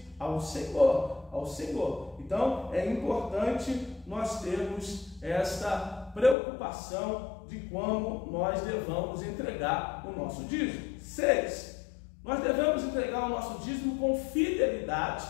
ao Senhor. Então, é importante nós termos esta preocupação de como nós devamos entregar o nosso dízimo. 6, nós devemos entregar o nosso dízimo com fidelidade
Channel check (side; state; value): right; drops out; at 6.4 s